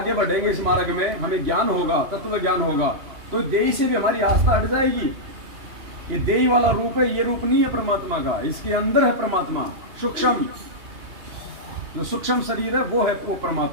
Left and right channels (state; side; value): late; left; 2.8 ms